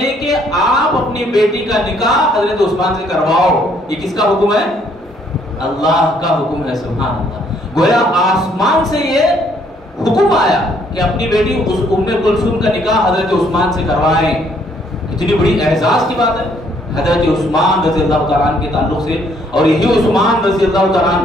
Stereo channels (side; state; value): both; normal; correlation 0.66